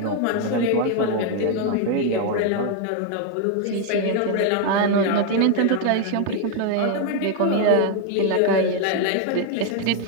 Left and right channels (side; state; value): both; different; correlation 0.01